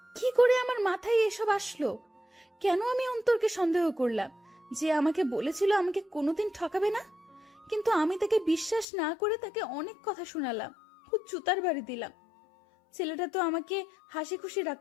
কি করে আমার মাথায় এসব আসলো? কেন আমি অন্তরকে সন্দেহ করলাম? যে আমাকে বলেছিল আমাকে কোনোদিন ঠকাবে না, কিন্তু আমি তাকে বিশ্বাস না করে তাকে অনেক কথা শোনালাম, খুব জুতার বাড়ি দিলাম। ছেলেটা তো আমাকে হাসি খুশি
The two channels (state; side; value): drops out; right; at 8.8 s